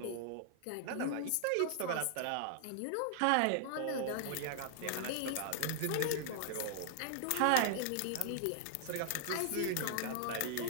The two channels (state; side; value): different; both; correlation -0.01